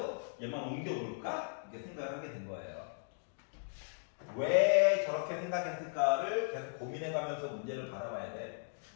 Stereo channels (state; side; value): silent; right; digital silence